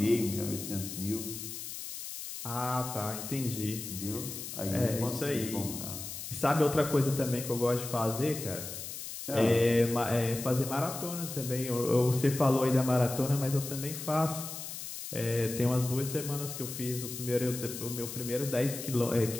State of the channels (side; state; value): left; noise; hiss, 8 dB below the sound